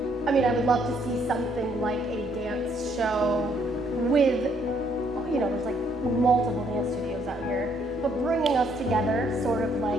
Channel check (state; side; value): normal; both; correlation 0.68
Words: I mean, I would love to see something like a dance show with, you know, there's like multiple dance studios out here, but bringing us together, sort of